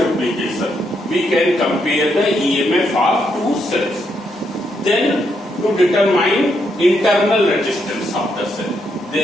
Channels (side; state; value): both; normal; correlation 0.78